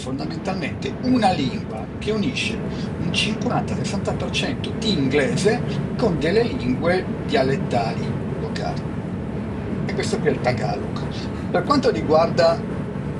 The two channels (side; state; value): both; identical; correlation 1.00